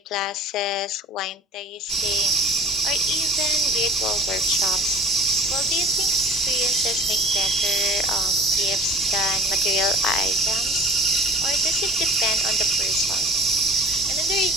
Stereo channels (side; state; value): both; normal; correlation 0.42